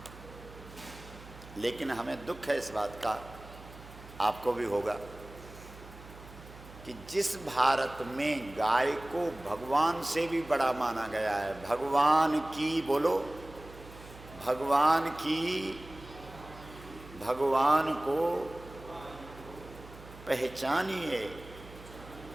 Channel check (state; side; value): noise; right; hum, 17 dB below the sound